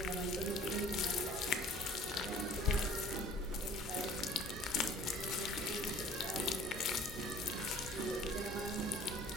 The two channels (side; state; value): both; normal; correlation 0.50